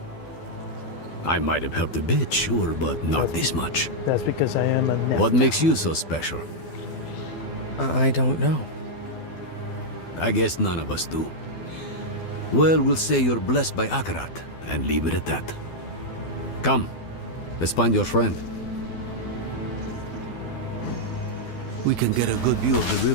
I might have helped a bit, sure, but not this much. That's because I am a net. What makes you so special? I don't know. I guess none of us do. Well, we'll say you're blessed by Akarat, and leave it at that. Come, let's find your friend. We can get a good view of the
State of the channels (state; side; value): late; right; 12 ms